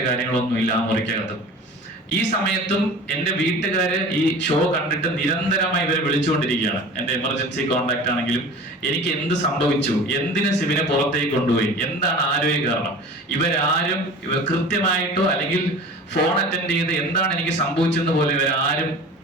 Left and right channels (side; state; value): both; normal; correlation 0.39